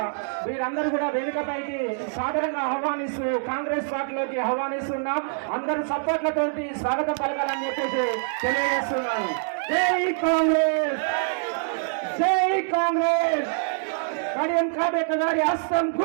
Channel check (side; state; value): left; silent; digital silence